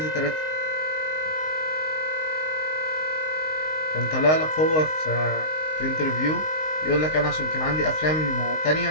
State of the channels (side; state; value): right; late; 19 ms